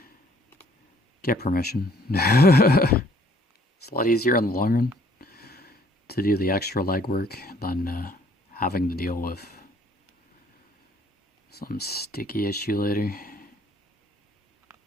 get permission. It's a lot easier in the long run to do the extra legwork than having to deal with some sticky issue later.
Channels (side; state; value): both; normal; correlation 0.60